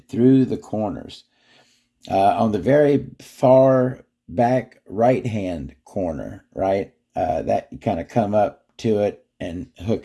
through the corners. On the very far back right-hand corner, right? That you kind of come up to it and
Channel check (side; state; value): both; identical; correlation 1.00